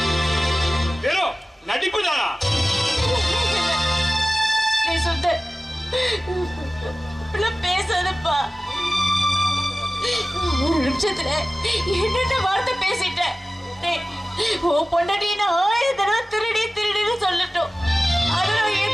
வெறும் நடிப்பு தானா? நீ சுந்தர் பேசாதப்பா. ஒரு நிமிஷத்துல என்னென்ன வார்த்தை பேசிட்டேன். உன் பொண்டாட்டி நான் 1000 தடவை திருடின்னு சொல்லட்டும், அதை நான்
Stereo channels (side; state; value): both; normal; correlation 0.96